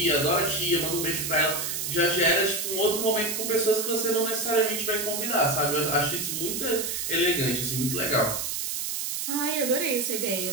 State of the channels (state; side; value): noise; right; hiss, 2 dB below the sound